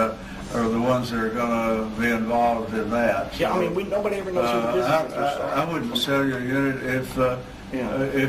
the ones that are going to be involved in that. Yeah, I mean, nobody ever knows who the business interests are. I wouldn't sell you a unit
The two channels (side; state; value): both; identical; correlation 1.00